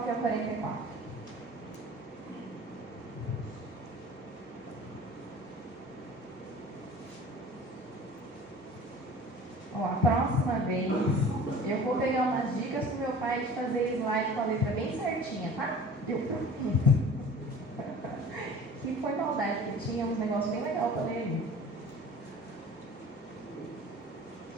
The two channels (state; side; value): normal; both; correlation 0.43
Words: ao 44. A próxima vez eu vou pegar umas dicas com meu pai de fazer slide com a letra bem certinha, tá? Eu prometo. Que foi maldade, que tinha uns negócios bem legais para ler ali.